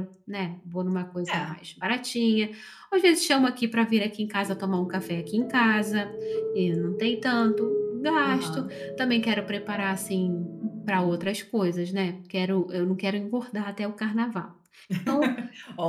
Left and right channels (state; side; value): identical; both; correlation 1.00